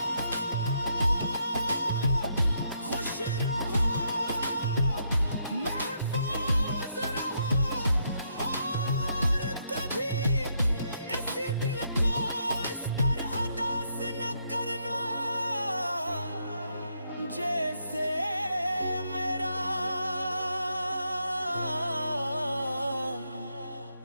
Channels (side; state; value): both; inverted; correlation -0.76